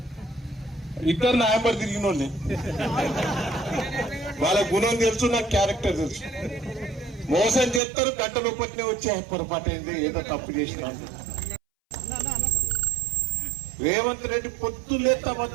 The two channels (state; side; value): drops out; left; at 7.8 s